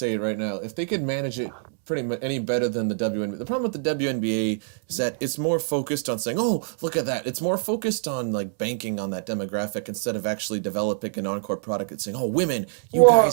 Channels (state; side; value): silent; left; digital silence